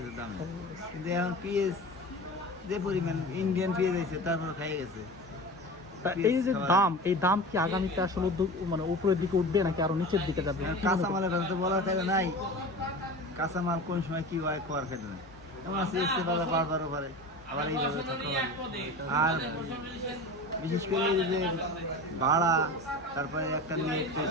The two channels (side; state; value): both; normal; correlation 0.32